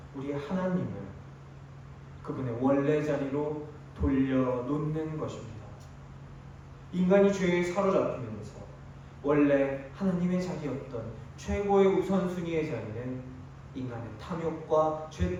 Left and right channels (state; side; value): identical; both; correlation 1.00